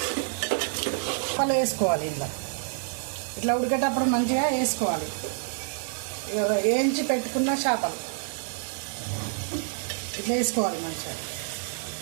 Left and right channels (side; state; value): left; silent; digital silence